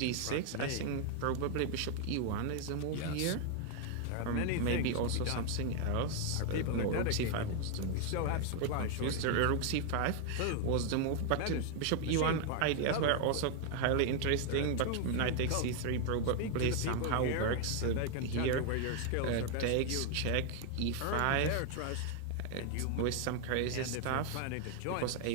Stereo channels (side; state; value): both; different; correlation 0.00